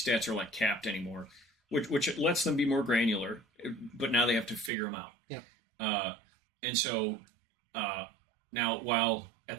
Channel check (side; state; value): left; drops out; at 4.7 s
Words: stats are like capped anymore, which lets them be more granular, but now they have to figure them out. Yeah. And so now, while at